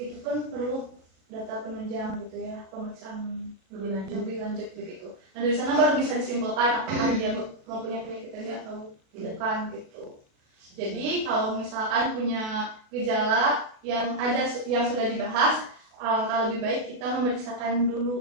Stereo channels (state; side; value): late; left; 37 ms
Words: pun perlu data penunjang gitu ya, pemeriksaan lebih lanjut begitu. Nah, dari sana baru bisa disimpulkan apakah dia mempunyai penyakit TB atau bukan gitu. Jadi kalau misalkan punya gejala yang sudah dibahas, alangkah lebih baik kita memeriksakan